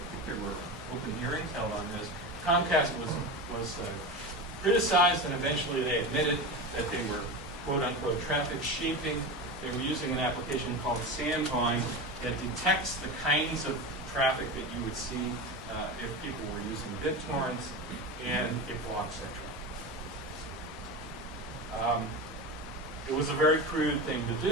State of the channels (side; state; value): both; normal; correlation 0.24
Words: think there were open hearings held on this, Comcast was criticized, and eventually they admitted that they were quote-unquote traffic shaping. They were using an application called Sandvine that detects the kinds of traffic that you would see if people were using BitTorrents, and it blocks that traffic. It was a very crude thing to